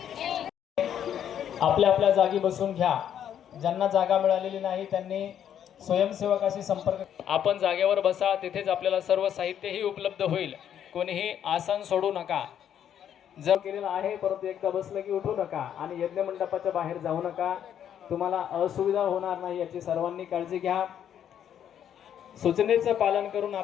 आपल्या आपल्या जागी बसून घ्या। ज्यांना जागा मिळालेली नाही त्यांनी स्वयंसेवकाशी संपर्क। आपण जागेवर बसा, तिथेच आपल्याला सर्व साहित्यही उपलब्ध होईल। कोणीही आसन सोडू नका। जर केलेलं आहे परंतु एकदा बसलं की उठू नका आणि यज्ञ मंडपाच्या बाहेर जाऊ नका, तुम्हाला असुविधा होणार नाही याची सर्वांनी काळजी घ्या। सूचनेचं पालन करून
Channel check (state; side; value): quieter; right; 9.6 dB